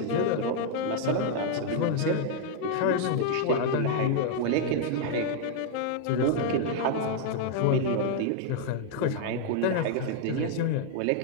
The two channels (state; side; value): different; both; correlation 0.00